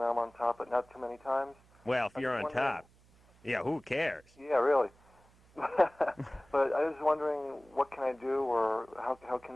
I'm on top, but not too many times. Well, if you're on top, yeah, who cares? Yeah, really. But I was wondering, what can I do, or how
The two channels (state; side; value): noise; right; hum, 29 dB below the sound